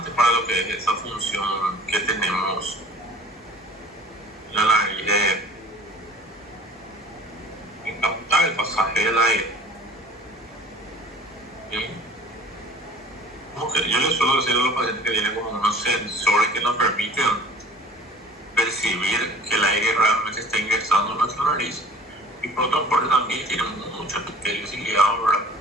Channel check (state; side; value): normal; both; correlation 0.47